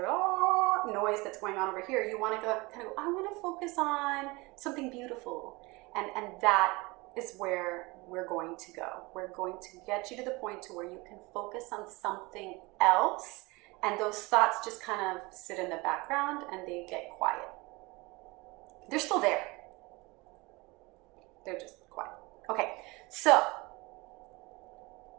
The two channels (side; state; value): left; quieter; 24.3 dB